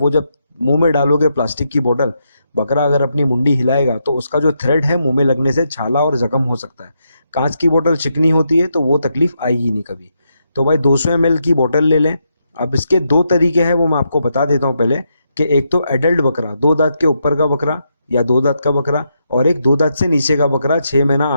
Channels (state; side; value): inverted; both; correlation -0.81